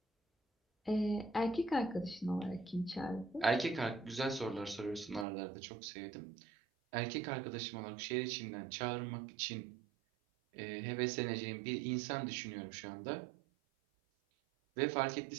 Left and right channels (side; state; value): left; drops out; at 5.2 s